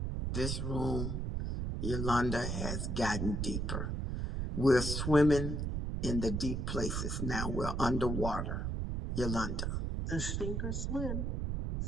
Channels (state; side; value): noise; right; rumble, 1 dB below the sound